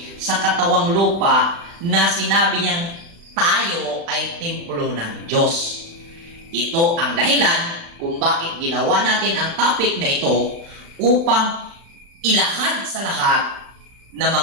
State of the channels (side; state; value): left; late; 35 ms